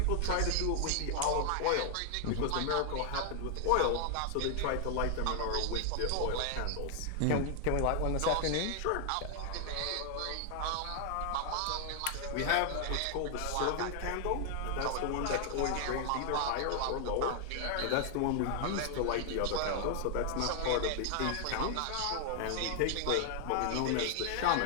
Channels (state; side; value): different; both; correlation 0.00